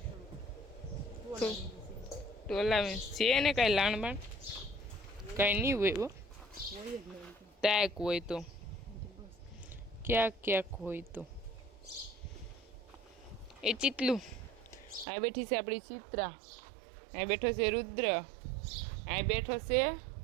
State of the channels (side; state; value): left; drops out; at 15.1 s